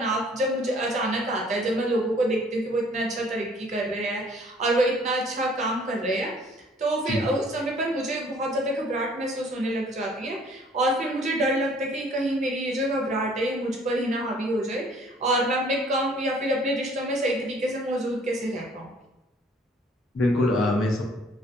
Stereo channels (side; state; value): both; normal; correlation 0.56